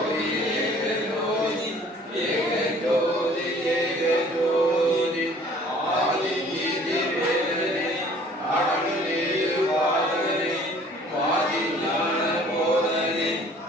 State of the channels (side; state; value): both; normal; correlation 0.53